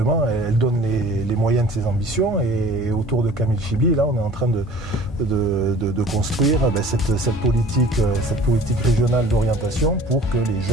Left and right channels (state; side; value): normal; both; correlation 0.47